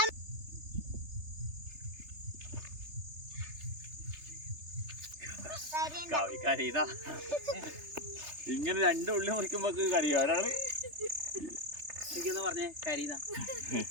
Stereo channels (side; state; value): left; late; 3.3 ms